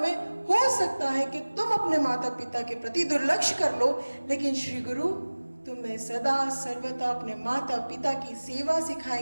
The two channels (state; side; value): inverted; both; correlation -1.00